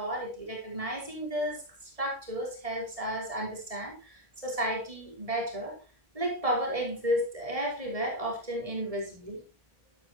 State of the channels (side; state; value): left; late; 1.7 ms